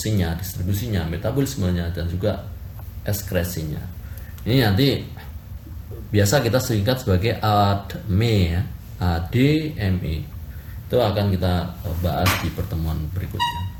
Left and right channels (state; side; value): identical; both; correlation 1.00